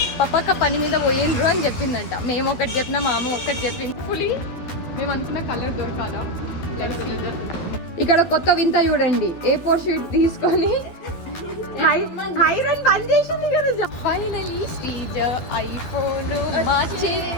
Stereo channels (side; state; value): right; late; 12 ms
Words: పప్పక్క పని మీద పోయిండ్రు అని చెప్పిందంట మేము ఒకటి చెప్పినా మా అమ్మ ఒకటి చెప్పింది ఫుల్లీ మేము అనుకున్న కలర్ దొరకాలా ఇక్కడ కొత్త వింత చూడండి A4 షీట్ తీసుకొని హైరన్ బంద్ చేసింది కదా ఫైనలీ శ్రీజ ఐఫోన్ మా